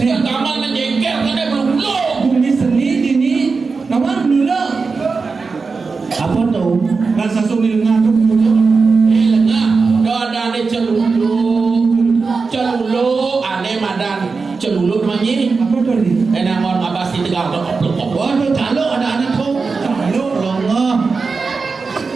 kamar menjengkel karena belulu. Bumi seni dini. Nama dulu. Apa tuh? Bahasa Sumil ngadu dulu. Lengah, ada ane celulu, ane madan celulu namanya. Apa tuh ini? Enang orang abas di tegal dok. Waduh, calo ada anak kau. Calo. Lengah.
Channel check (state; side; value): quieter; left; 4.5 dB